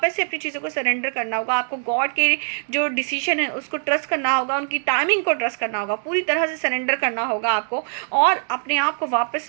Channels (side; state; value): left; silent; digital silence